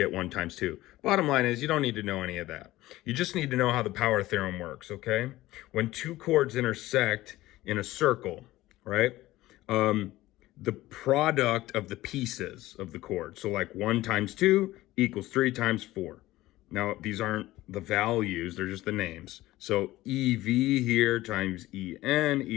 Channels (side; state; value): right; quieter; 16.9 dB